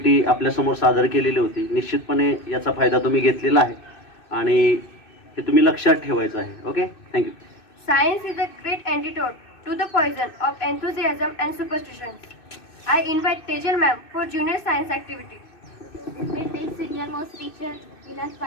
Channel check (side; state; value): right; late; 2.6 ms